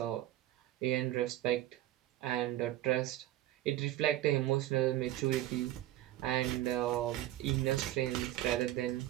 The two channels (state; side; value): quieter; left; 14.4 dB